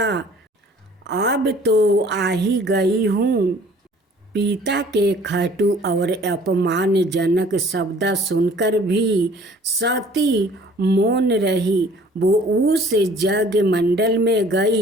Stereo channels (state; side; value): normal; both; correlation 0.53